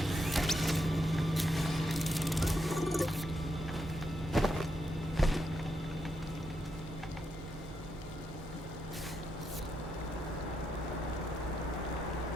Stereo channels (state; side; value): normal; both; correlation 0.82